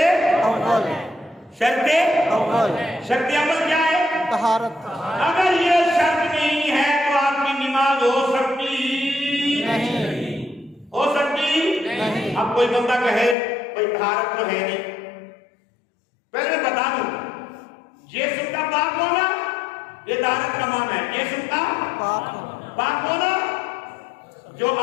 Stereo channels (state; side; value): drops out; right; at 13.4 s